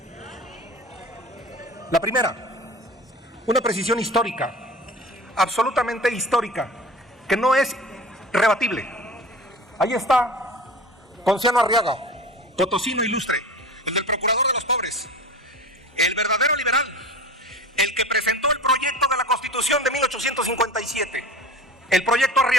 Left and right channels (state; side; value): normal; both; correlation 0.36